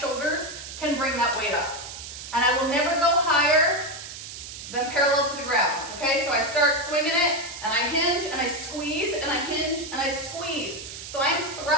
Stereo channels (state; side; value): noise; right; hiss, 11 dB below the sound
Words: can bring that weight up. And I will never go higher than parallel to the ground, okay? So I start swinging it, and I hinge, and I squeeze, and I hinge, and I squeeze. So I'm